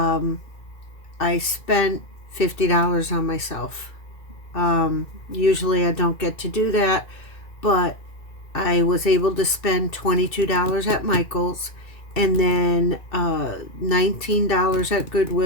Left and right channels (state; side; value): late; right; 2.6 ms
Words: spent $50 on myself. Usually I don't get to do that, but I was able to spend $22 at Michael's, and then $19 at